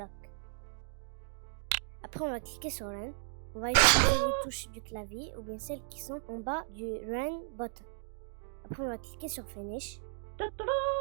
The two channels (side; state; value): left; silent; digital silence